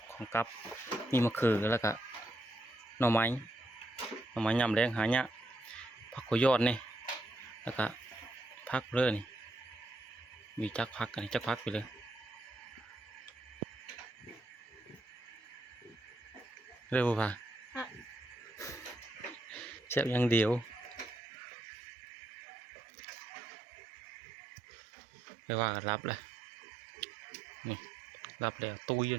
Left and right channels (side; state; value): left; drops out; at 21.2 s